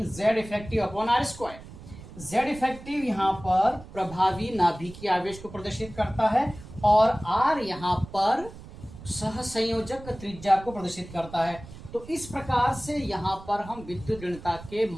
Z effective upon R square. Z effective यहाँ पर प्रभावी नाभिकीय आवेश को प्रदर्शित करता है और आर यहाँ पर सहसंयोजक त्रिज्या को प्रदर्शित करता है। तो इस प्रकार से यहाँ पर हम विद्युत ऋणता के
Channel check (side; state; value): right; noise; rumble, 16 dB below the sound